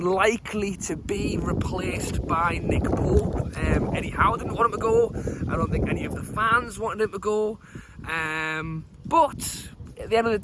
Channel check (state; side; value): identical; both; correlation 1.00